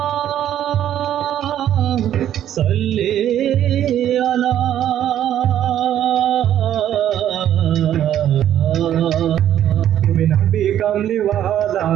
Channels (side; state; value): left; quieter; 11.1 dB